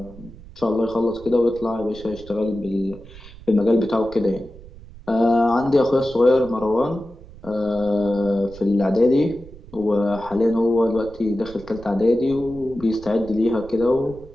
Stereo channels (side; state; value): right; noise; rumble, 18 dB below the sound